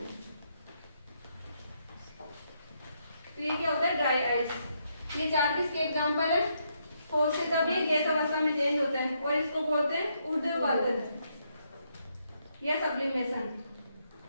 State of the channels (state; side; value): inverted; both; correlation -0.77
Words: तो ये क्या होता है, ड्राई आइस। ये चार किसके एग्जांपल है, ठोस से जब ये गैस अवस्था में चेंज होता है, और इसको बोलते हैं ऊर्ध्वपातन या सब्लिमेशन।